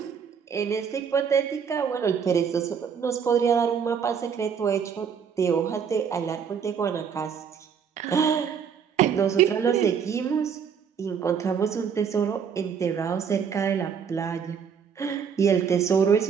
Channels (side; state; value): left; quieter; 7.0 dB